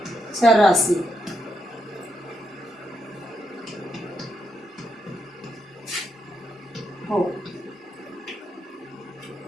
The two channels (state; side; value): normal; both; correlation 0.79